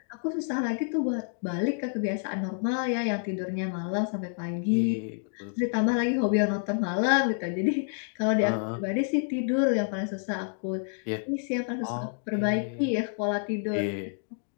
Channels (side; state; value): right; silent; 59 dB below the other